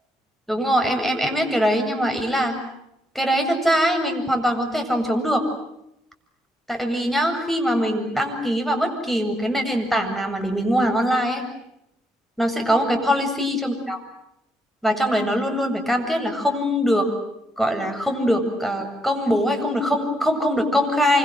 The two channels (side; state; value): both; normal; correlation 0.76